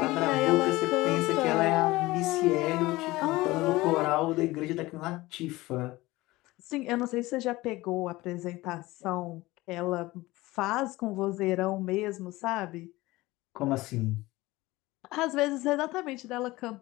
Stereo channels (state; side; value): quieter; right; 19.5 dB